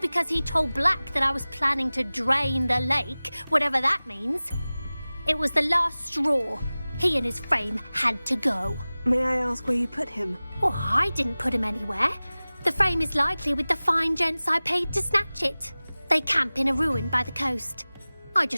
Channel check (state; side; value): inverted; both; correlation -0.98